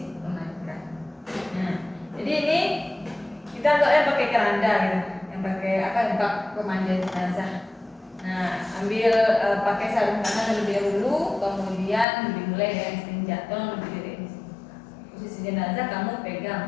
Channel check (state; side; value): drops out; right; at 12.1 s